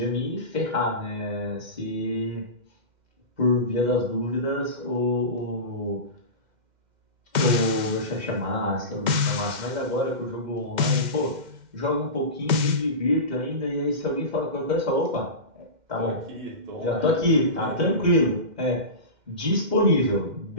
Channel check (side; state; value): left; late; 2.1 ms